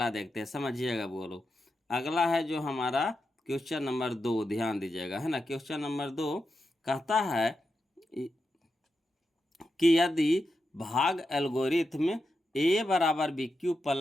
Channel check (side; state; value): both; normal; correlation 0.88